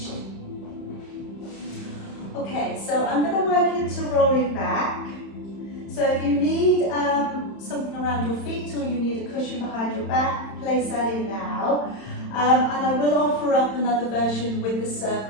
Okay, so I'm going to work into rolling back. So if you need something around your feet or you need a cushion behind your back, place that in now. And I will offer up another version with the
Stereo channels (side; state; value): right; late; 31 ms